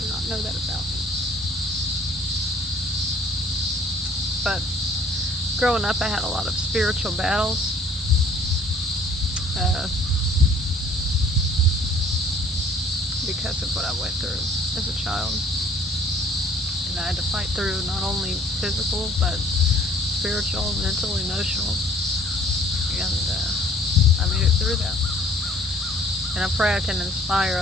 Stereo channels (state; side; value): normal; both; correlation 0.55